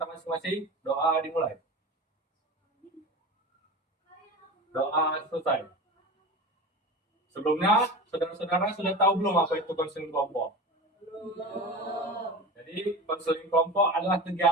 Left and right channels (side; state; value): both; normal; correlation 0.30